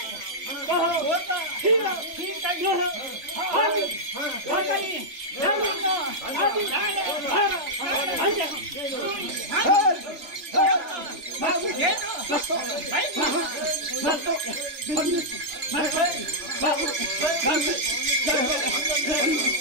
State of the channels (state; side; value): late; left; 3.4 ms